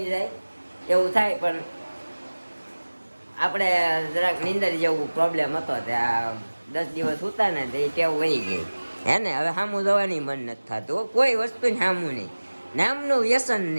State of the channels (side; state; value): both; inverted; correlation -1.00